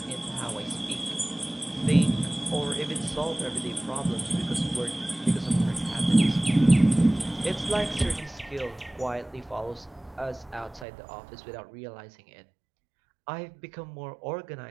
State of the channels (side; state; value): left; drops out; at 10.9 s